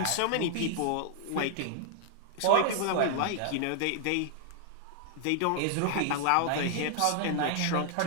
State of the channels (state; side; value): different; both; correlation 0.00